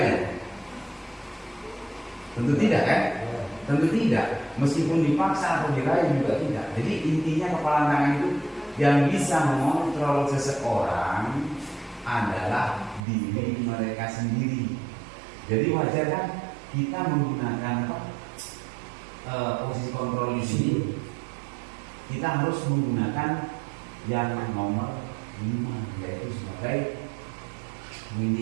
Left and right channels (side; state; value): left; drops out; at 13.0 s